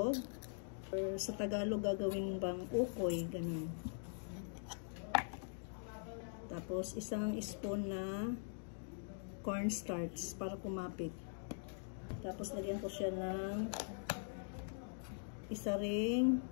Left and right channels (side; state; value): right; silent; digital silence